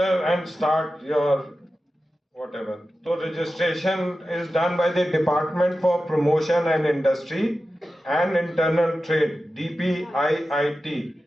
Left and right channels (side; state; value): both; normal; correlation 0.93